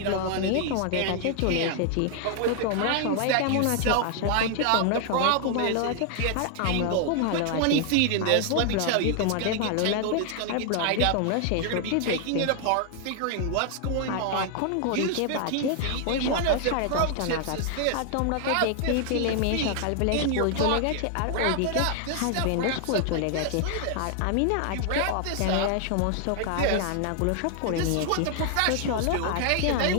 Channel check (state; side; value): different; both; correlation 0.00